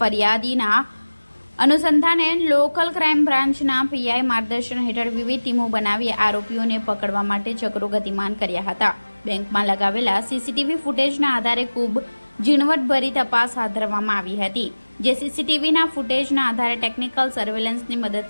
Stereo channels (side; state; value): both; inverted; correlation -1.00